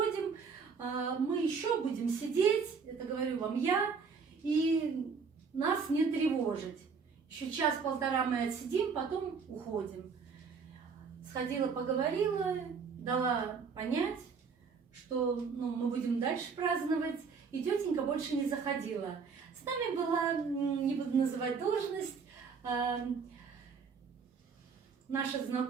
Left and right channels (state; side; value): quieter; left; 5.5 dB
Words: мы еще будем сидеть, это говорю вам я, и нас не тревожить. Еще час-полтора мы отсидим, потом уходим. Сходила, поговорила, дала понять, что мы будем дальше праздновать, и тетенька больше не заходила. С нами была, не буду называть должность, наша